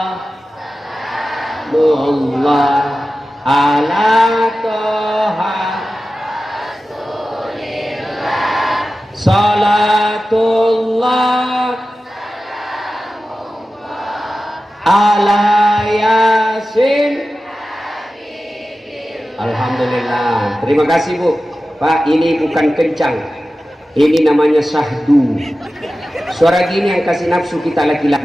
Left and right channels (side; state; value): both; normal; correlation 0.94